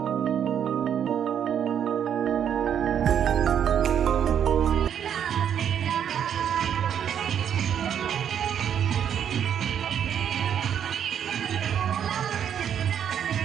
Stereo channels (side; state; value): left; quieter; 8.9 dB